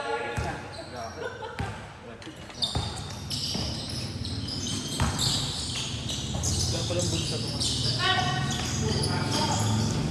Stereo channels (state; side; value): identical; both; correlation 1.00